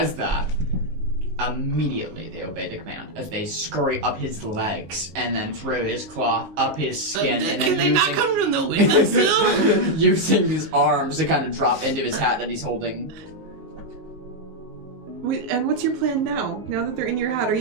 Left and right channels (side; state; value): left; late; 19 ms